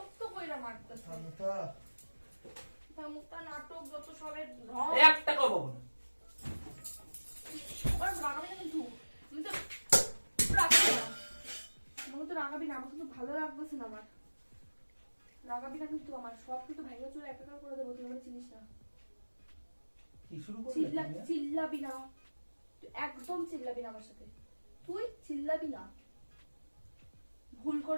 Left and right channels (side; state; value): both; inverted; correlation -1.00